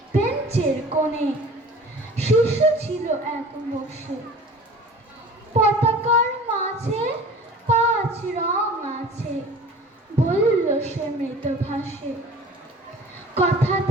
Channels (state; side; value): normal; both; correlation 0.43